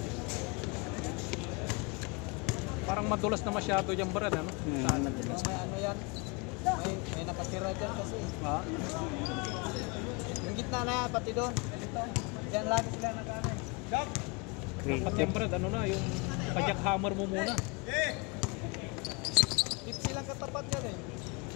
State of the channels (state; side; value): quieter; right; 29.0 dB